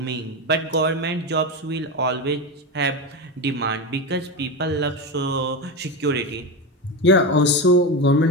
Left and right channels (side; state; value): both; normal; correlation 0.17